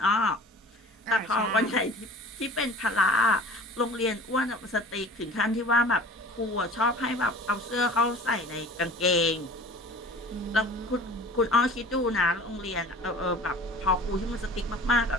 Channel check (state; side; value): normal; both; correlation 0.43